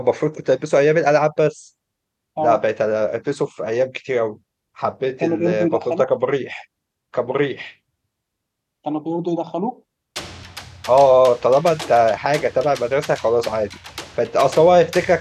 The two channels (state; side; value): identical; both; correlation 1.00